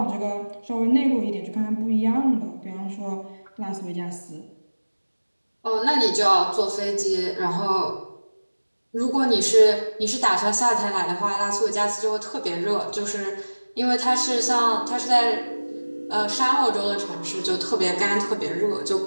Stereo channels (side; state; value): both; inverted; correlation -1.00